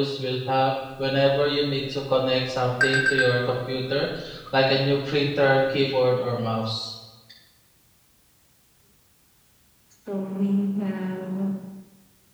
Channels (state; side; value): identical; both; correlation 1.00